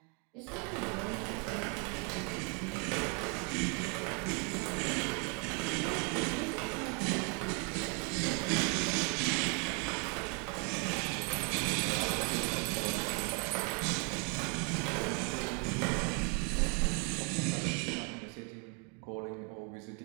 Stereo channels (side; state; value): left; quieter; 33.7 dB